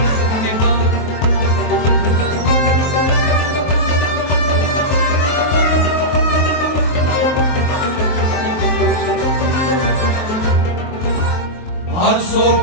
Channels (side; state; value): right; late; 23 ms